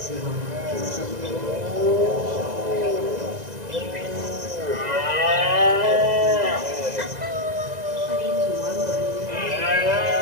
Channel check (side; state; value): left; late; 2.0 ms